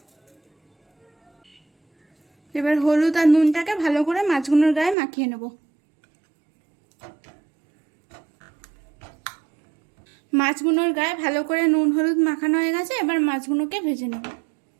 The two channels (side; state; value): left; drops out; at 5.0 s